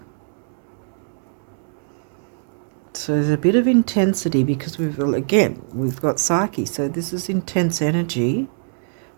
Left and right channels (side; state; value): left; silent; digital silence